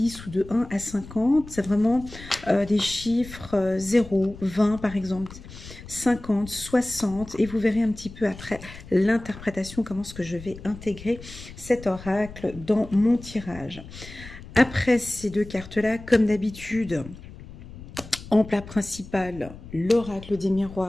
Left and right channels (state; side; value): noise; left; rumble, 15 dB below the sound